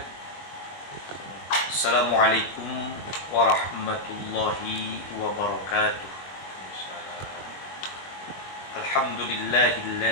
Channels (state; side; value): late; right; 22 ms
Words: Assalamualaikum warahmatullahi wabarakatuh.